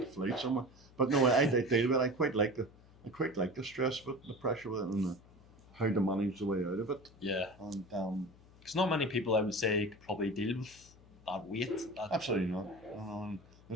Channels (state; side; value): noise; left; hum, 24 dB below the sound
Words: a flight somewhere. But no, I deal with it. I quite like the stress of it, the pressure of it, and how to manage the way out of it. Yeah. And because not many people, I would say, could probably deal with that weight. absolutely not.